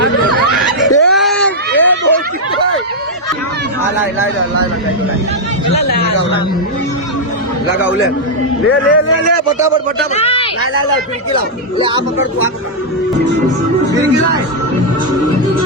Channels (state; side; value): normal; both; correlation -0.03